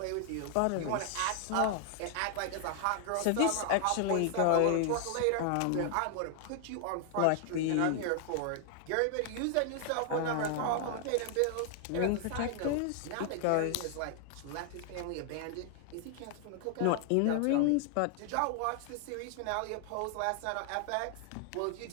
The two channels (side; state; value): both; different; correlation 0.00